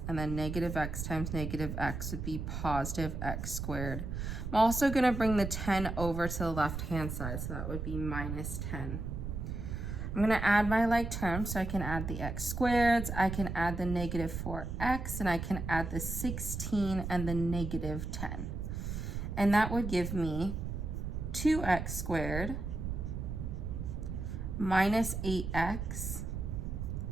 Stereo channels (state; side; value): noise; right; rumble, 4 dB below the sound